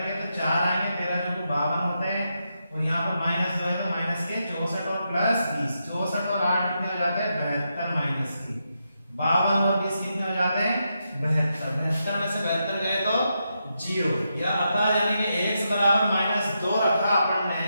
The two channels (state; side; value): inverted; both; correlation -0.84